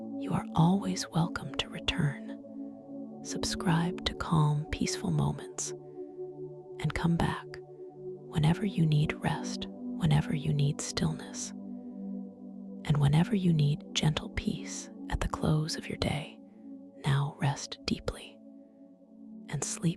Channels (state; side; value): identical; both; correlation 1.00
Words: you are always welcome to return. Subscribe to Calm, Peaceful Moments and come back whenever you need rest, whenever you need stillness, and whenever you need gentle peace at the close of your day. Now rest deeply and